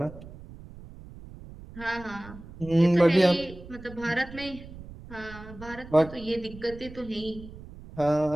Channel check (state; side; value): noise; right; rumble, 16 dB below the sound